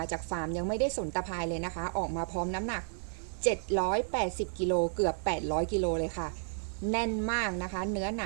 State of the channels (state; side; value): silent; left; 55 dB below the other